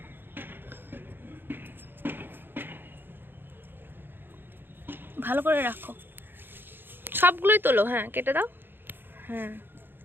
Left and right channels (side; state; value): left; late; 0.099 ms